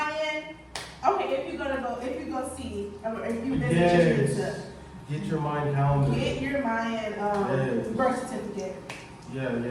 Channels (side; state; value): both; identical; correlation 1.00